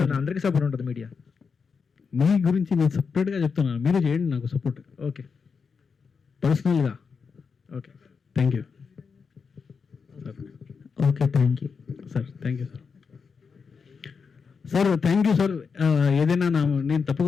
అందరికీ సపోర్ట్ ఉంటుంది మీడియా. మీ గురించి నేను సపరేట్గా చెప్తున్నాను, మీరు చేయండి నాకు సపోర్ట్. ఓకే, పర్సనల్గా. Okay, thank you sir. Okay, thank you sir. Thank you sir. Sir thank you sir. ఏదైనా నేను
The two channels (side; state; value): right; quieter; 5.5 dB